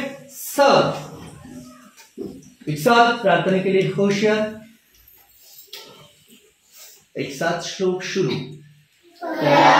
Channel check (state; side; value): identical; both; correlation 1.00